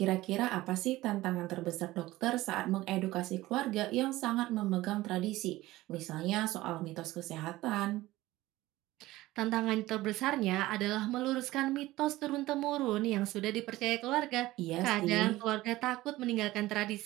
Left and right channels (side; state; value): left; quieter; 17.5 dB